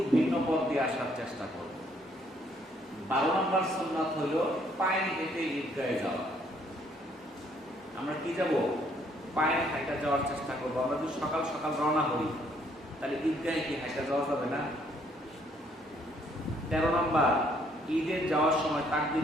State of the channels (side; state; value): both; normal; correlation 0.66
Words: ভিন্ন পথ দিয়ে আসার চেষ্টা করব। 12 নাম্বার সুন্নাত হলো পায়ে হেঁটে ঈদগাহে যাওয়া। আমরা কি যাব? পায়ে হাঁটা যাওয়ার চেষ্টা করবো। আমরা যদি সকাল সকাল রওনা হই তাহলে ঈদগাহে কি হাঁটা যাওয়া যাবে না? 13 নাম্বার, ঈদের যাওয়ার সময়